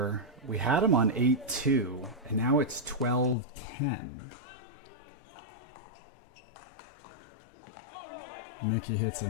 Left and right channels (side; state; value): right; drops out; at 3.4 s